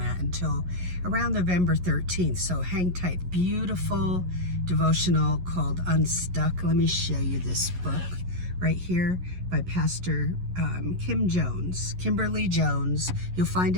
until around November 13th. So hang tight. Beautiful devotional called Unstuck. Let me show you this book right here by Pastor Kimberly Jones. You'll find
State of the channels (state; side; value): late; left; 11 ms